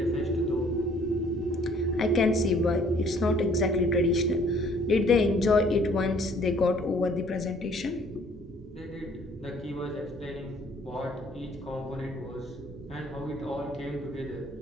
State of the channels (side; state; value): both; normal; correlation 0.58